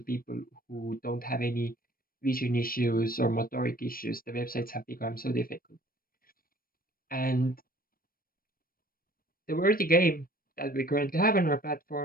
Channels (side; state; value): right; late; 0.42 ms